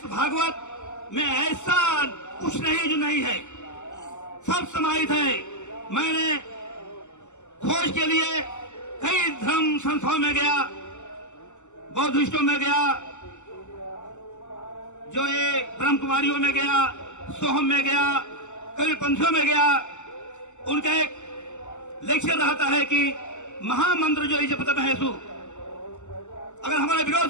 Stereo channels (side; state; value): right; late; 0.84 ms